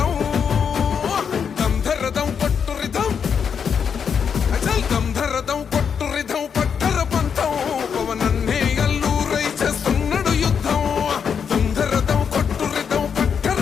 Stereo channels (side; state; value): right; quieter; 6.9 dB